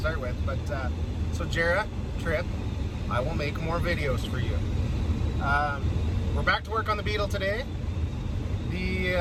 with, but so Jara, Trip, I will make more videos for you. We're back to work on the Beetle today. We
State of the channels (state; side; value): identical; both; correlation 1.00